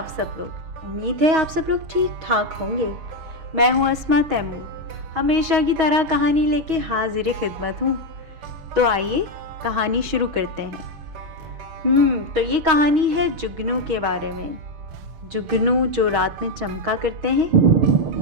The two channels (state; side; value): late; left; 6.2 ms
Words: सब लोग। उम्मीद है आप सब लोग ठीक ठाक होंगे। मैं हूं अस्मा तैमूर, हमेशा की तरह कहानी लेके हाजिर खिदमत हूं। तो आइए कहानी शुरू करते हैं। तो ये कहानी है जुगनू के बारे में। जुगनू जो रात में चमका करते हैं।